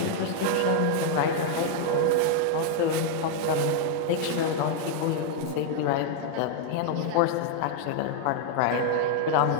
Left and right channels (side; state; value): both; different; correlation 0.00